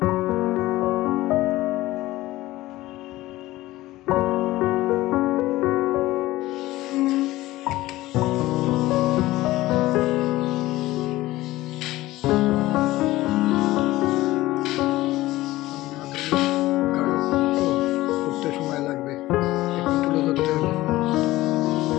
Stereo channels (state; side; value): quieter; right; 17.4 dB